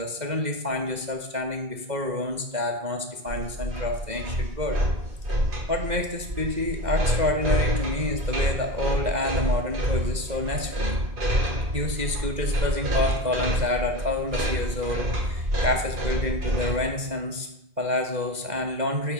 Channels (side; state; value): left; late; 2.0 ms